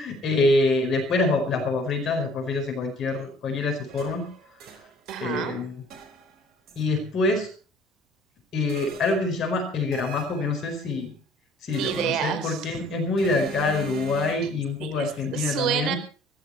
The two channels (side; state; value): both; normal; correlation 0.54